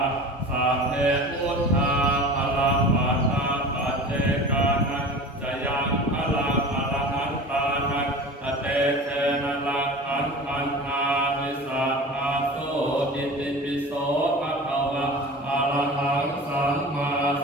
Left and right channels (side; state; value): both; normal; correlation 0.36